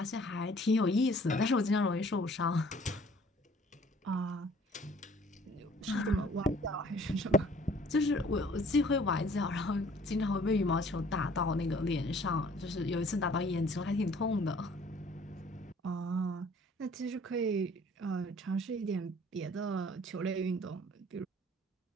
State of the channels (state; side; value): normal; both; correlation 0.55